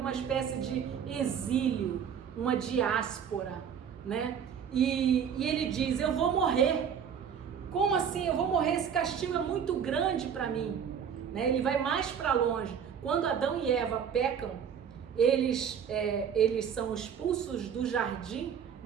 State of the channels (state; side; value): quieter; left; 7.7 dB